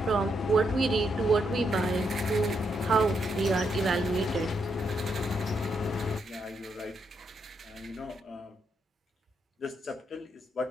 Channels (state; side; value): normal; both; correlation 0.79